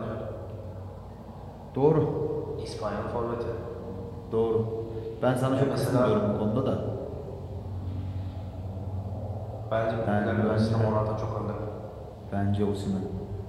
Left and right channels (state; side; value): identical; both; correlation 1.00